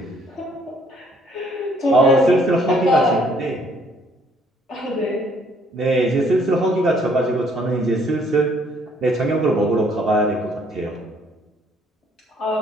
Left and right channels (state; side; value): normal; both; correlation 0.64